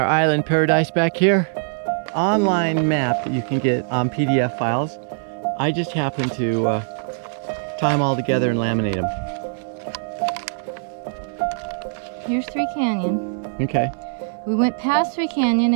island paradise back here. Online map that you can get on PDF files. I just happen to tie them all together and laminate them. Here's Three Canyon. Okay. We went past Three Canyon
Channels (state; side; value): silent; left; digital silence